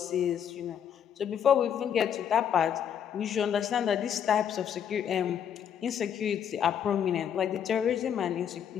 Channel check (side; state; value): right; quieter; 8.8 dB